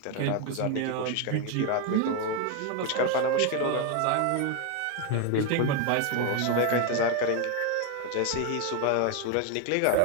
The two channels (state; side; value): different; both; correlation 0.01